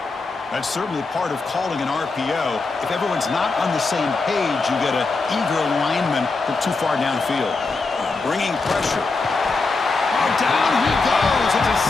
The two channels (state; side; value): quieter; right; 3.9 dB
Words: That's certainly part of calling an RPO. If everyone's not on the same page, you get an eager lineman from too far downfield. Bringing pressure. Oh, down he goes. It's a